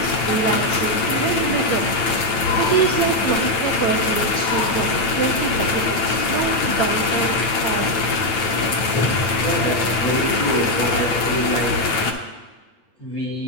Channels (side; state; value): right; late; 9.2 ms